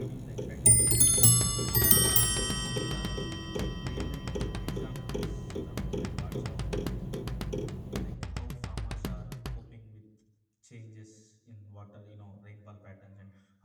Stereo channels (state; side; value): identical; both; correlation 1.00